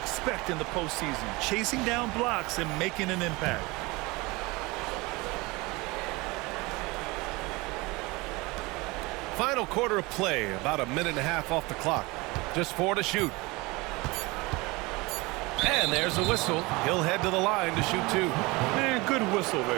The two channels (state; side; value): quieter; left; 23.8 dB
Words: in the postseason. Chasing down blocks and making an impact. Final quarter of play, about a minute and a half off the clock. Just 4 to shoot. And there's a whistle. He'll head to the line to shoot 2. Man, good whistle